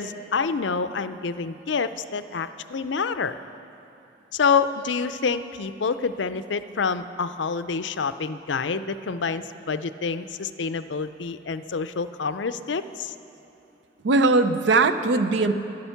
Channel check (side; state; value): both; normal; correlation 0.01